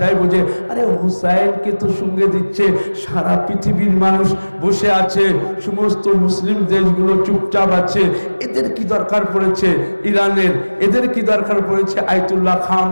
বুঝে, আরে হুসাইনকে তো সঙ্গে দিচ্ছে, সারা পৃথিবীর মানুষ বসে আছে, সমস্ত মুসলিম দেশগুলো চুপচাপ আছে, এদের কি দরকার পড়েছে ইরানের, এদের কি দরকার পড়েছে আয়াতুল্লাহ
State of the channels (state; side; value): inverted; both; correlation -1.00